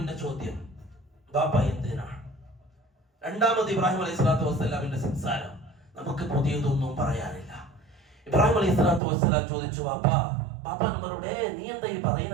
ചോദ്യം ബാപ്പ എന്തിനാണ്? രണ്ടാമത് ഇബ്രാഹിം അലൈഹിസ്സലാത്തു വസ്സലാമിന്റെ സംസാരം നമുക്ക് പുതിയതൊന്നും പറയാനില്ല. ഇബ്രാഹിം അലൈഹിസ്സലാത്തു വസ്സലാം ചോദിച്ചു, ബാപ്പ നമ്മളോട് നീ എന്താ ഈ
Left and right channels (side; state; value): left; drops out; at 9.0 s